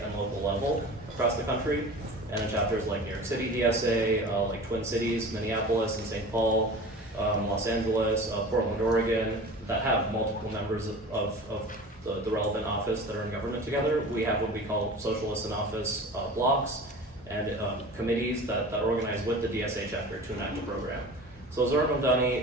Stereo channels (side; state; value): both; normal; correlation 0.37